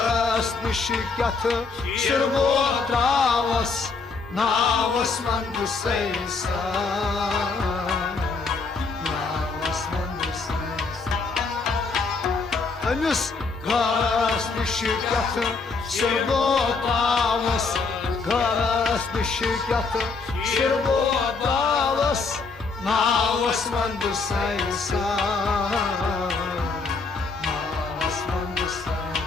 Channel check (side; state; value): right; quieter; 4.3 dB